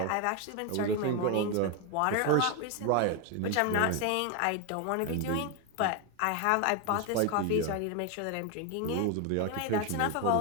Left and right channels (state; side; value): different; both; correlation 0.01